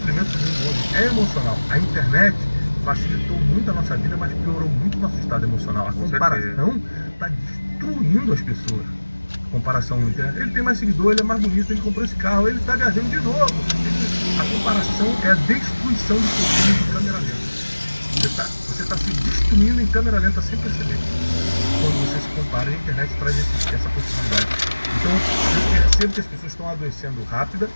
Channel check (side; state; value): both; inverted; correlation -1.00